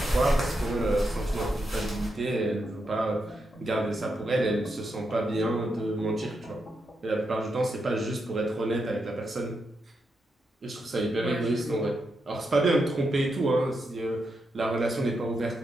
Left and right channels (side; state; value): both; normal; correlation 0.84